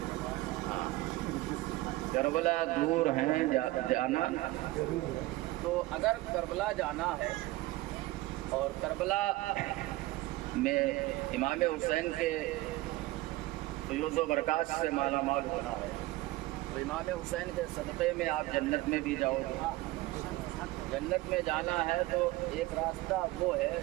کربلا دور ہیں جانا، تو اگر کربلا جانا ہے اور کربلا میں امام حسین کے فیوز و برکات سے مالا مال ہونا ہے تو امام حسین کے صدقے میں آپ جنت میں بھی جاؤ گے۔ جنت میں جانا ہے تو ایک راستہ وہ ہے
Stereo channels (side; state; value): left; quieter; 18.9 dB